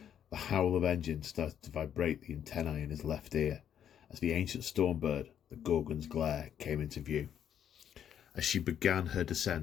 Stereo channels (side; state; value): right; quieter; 9.4 dB